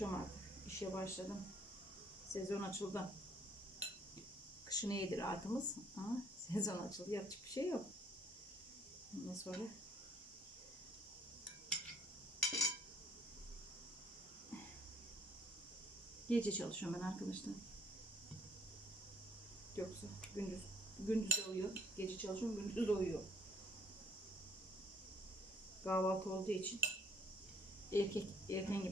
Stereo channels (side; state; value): both; normal; correlation 0.63